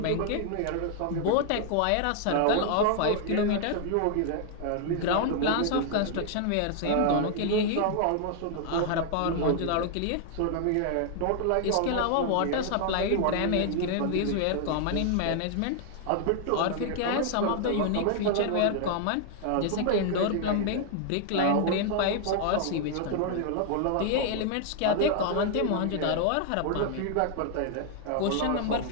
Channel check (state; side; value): different; both; correlation 0.00